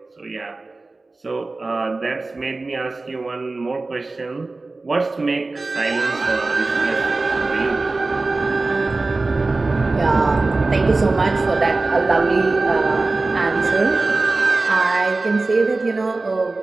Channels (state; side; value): quieter; left; 3.4 dB